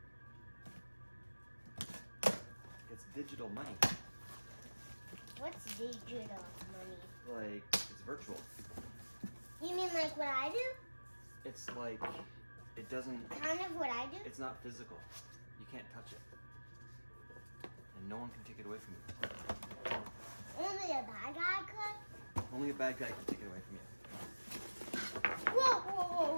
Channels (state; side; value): inverted; both; correlation -1.00